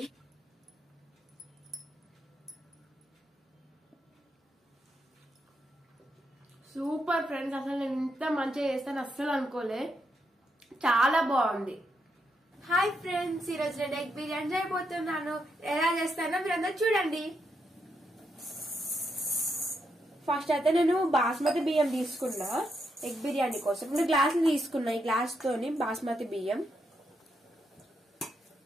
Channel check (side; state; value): both; normal; correlation 0.81